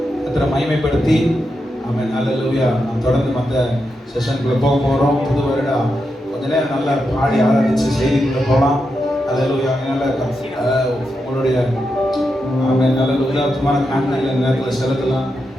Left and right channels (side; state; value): both; normal; correlation 0.86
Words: கர்த்தரை மகிமைப்படுத்தி ஆமென். ஹalleluya. நாம் தொடர்ந்து மற்ற செஷனுக்குள்ளே போக போகிறோம். புது வருடம் கொஞ்ச நேரம் நல்லா பாடி ஆராதிச்சு செய்திக்குள்ளே போகலாம். அல்லேலூயா. அதனால உங்களுடைய நல்ல உதாரணமான காண்களை நேரத்தில் செலுத்தலாம்.